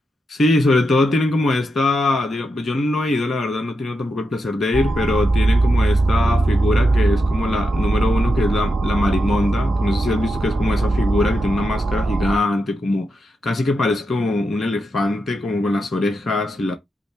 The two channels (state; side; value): normal; both; correlation 0.86